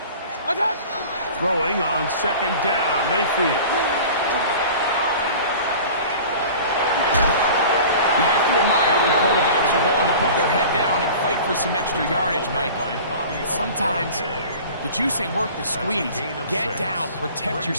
Attack. Throwing on second down, Mayfield. You have to admire when quarterbacks are willing to put their head down and fight for some extra yardage, Mike. Sometimes the juice ain't worth the squeeze. Get down, protect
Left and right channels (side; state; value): both; inverted; correlation -0.41